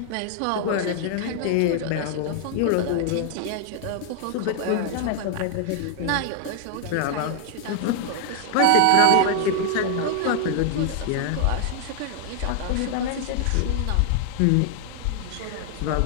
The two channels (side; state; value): both; different; correlation 0.00